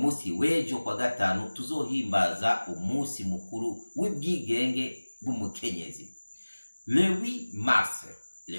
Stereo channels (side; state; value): both; inverted; correlation -1.00